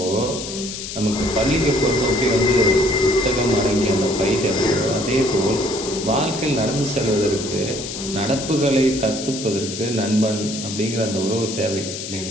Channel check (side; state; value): left; noise; hiss, 8 dB below the sound